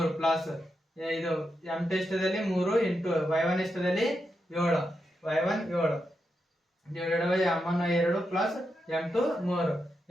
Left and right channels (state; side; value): normal; both; correlation 0.86